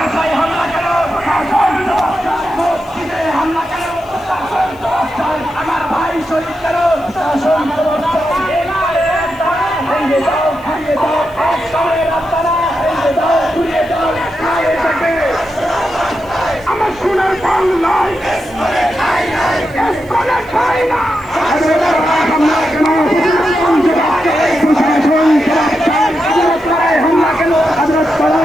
হামলা কেন? প্রশাসন জবাব চাই। মসজিদে হামলা কেন? প্রশাসন জবাব চাই। আমার ভাই শহীদ কেন? প্রশাসন জবাব চাই। ভেঙে দাও, ভেঙে দাও, এক সময়ের রাস্তারা ভেঙে দাও, ঘুরিয়ে দাও, খায় থাকে। আমার সোনার বাংলায় এসকলে খাই না। হামলা কেন? প্রশাসন জবাব চাই। প্রশাসন জবাব চাই। হামলায় হামলা কেন?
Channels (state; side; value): noise; left; hiss, 28 dB below the sound